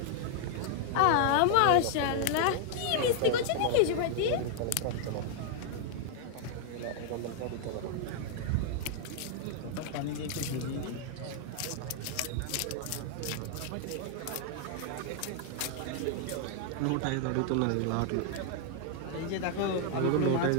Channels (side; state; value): both; different; correlation 0.00